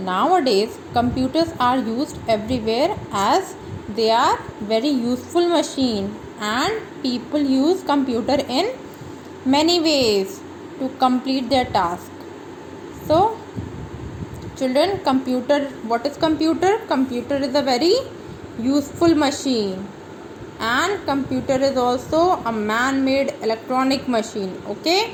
computers are used everywhere as they are very useful machine, and people use computer in many ways to complete their task. So, children, what is computer? Computer is a very useful machine, and computer is also a man-made electronic machine.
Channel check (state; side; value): identical; both; correlation 1.00